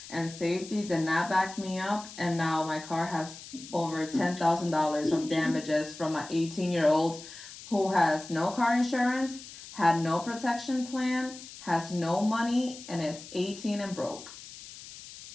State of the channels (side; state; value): left; noise; hiss, 15 dB below the sound